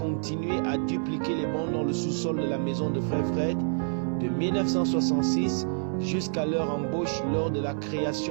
à dupliquer les bandes dans le sous-sol de la maison de frère Fred de 1966 jusqu'à leur embauche lors de la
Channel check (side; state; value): left; silent; digital silence